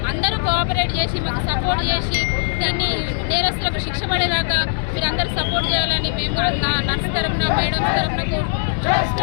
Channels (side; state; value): right; silent; digital silence